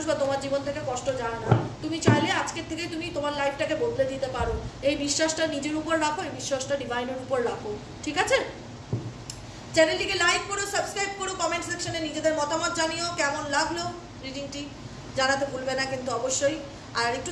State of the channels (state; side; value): identical; both; correlation 1.00